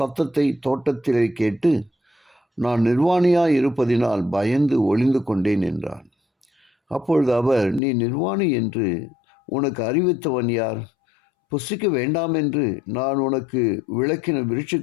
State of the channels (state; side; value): drops out; right; at 7.8 s